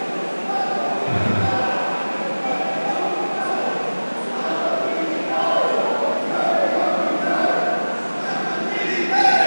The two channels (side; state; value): both; inverted; correlation -1.00